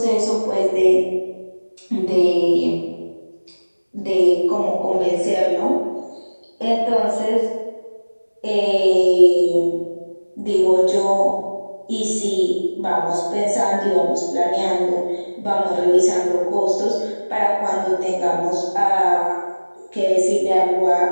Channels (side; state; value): both; inverted; correlation -1.00